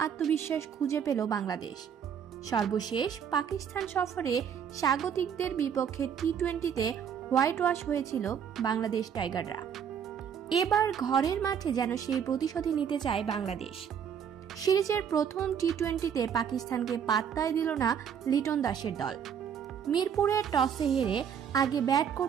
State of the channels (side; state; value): left; quieter; 8.0 dB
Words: খুঁজে পেল বাংলাদেশ। সর্বশেষ পাকিস্তান সফরে স্বাগতিকদের বিপক্ষে টি-20তে হোয়াইট ওয়াশ হয়েছিল বাংলাদেশ টাইগাররা। এবার ঘরের মাঠে যেন সেই প্রতিশোধই নিতে চায় বাংলাদেশ। সিরিজের প্রথম টি-20তে পাকিস্তানকে পাত্তাই দিল না লিটন দাসের দল। মিরপুরের টসে হেরে আগে ব্যাট